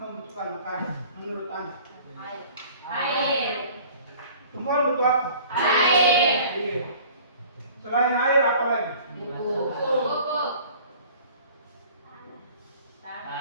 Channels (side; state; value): both; inverted; correlation -0.48